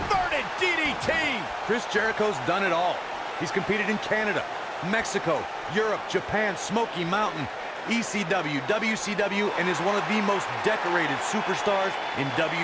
DDT! Chris Jericho's done it all. He's competed in Canada, Mexico, Europe, Japan, Smoky Mountain, ECW, WCW, and is one of the most decorated superstars in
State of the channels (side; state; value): both; identical; correlation 1.00